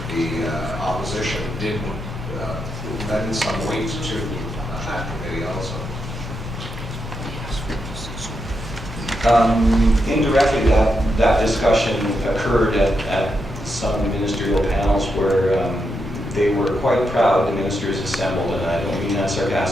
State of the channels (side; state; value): both; normal; correlation 0.84